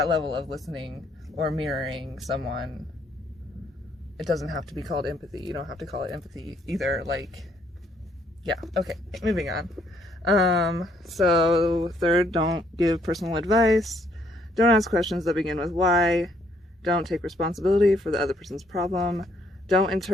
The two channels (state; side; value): normal; both; correlation 0.68